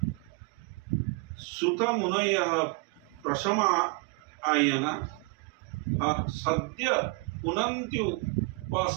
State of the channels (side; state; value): left; quieter; 30.3 dB